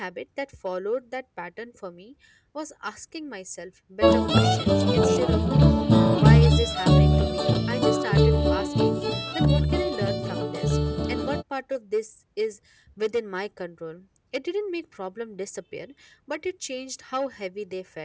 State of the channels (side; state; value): both; identical; correlation 1.00